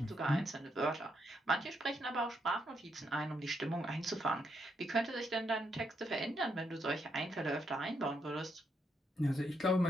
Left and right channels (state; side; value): normal; both; correlation 0.78